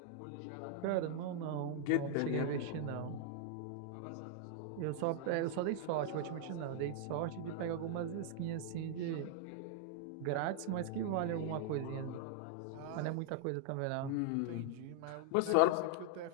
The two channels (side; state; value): both; different; correlation 0.00